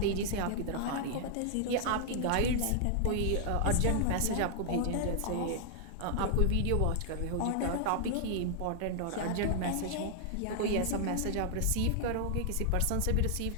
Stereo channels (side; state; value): both; different; correlation 0.00